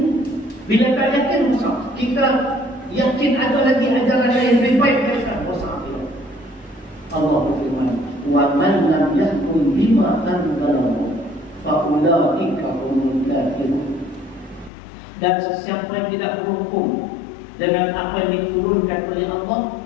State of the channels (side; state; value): right; drops out; at 14.7 s